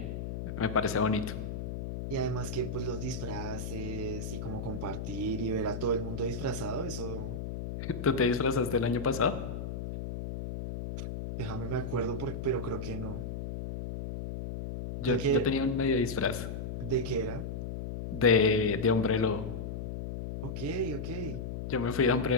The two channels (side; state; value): left; noise; hum, 5 dB below the sound